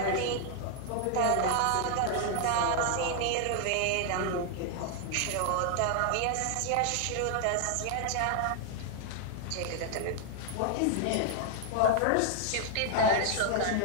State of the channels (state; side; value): different; both; correlation 0.00